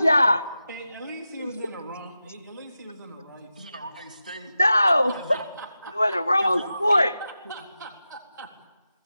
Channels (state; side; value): inverted; both; correlation -0.93